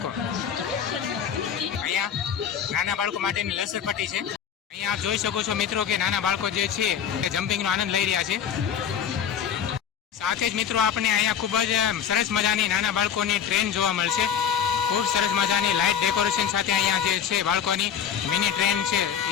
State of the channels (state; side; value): quieter; right; 8.4 dB